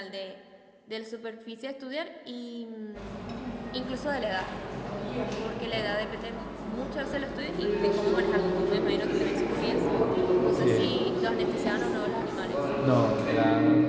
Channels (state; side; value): identical; both; correlation 1.00